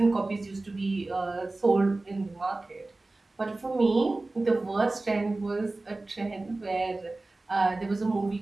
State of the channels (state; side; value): quieter; left; 3.1 dB